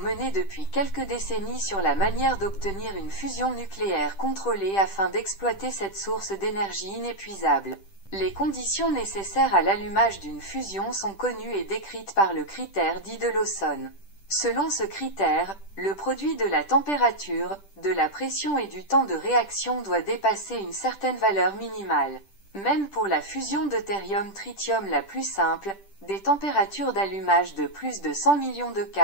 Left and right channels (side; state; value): right; late; 10 ms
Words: depuis quelques décennies sur la manière d'obtenir une fusion nucléaire contrôlée afin d'exploiter cette source d'énergie inépuisable. Les conditions nécessaires à l'allumage d'une fusion sont connues et décrites par le critère dit de Lawson. Selon ce critère, le produit de la température, de la pression et du temps de réaction doit dépasser une certaine valeur minimale. Même pour la fusion deutérium-tritium la plus simple, des températures d'allumage de plus de 100 millions de